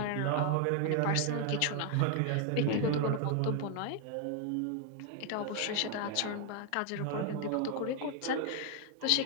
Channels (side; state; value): both; different; correlation 0.01